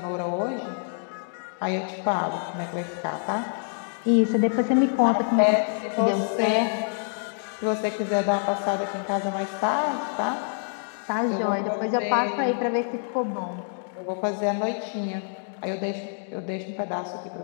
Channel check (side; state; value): right; silent; digital silence